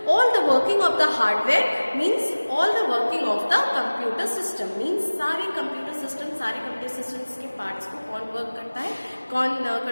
all the working of the hardware, means all the working of the computer system, means सारे computer systems के parts को कौन work करता है, कौन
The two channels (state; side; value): inverted; both; correlation -1.00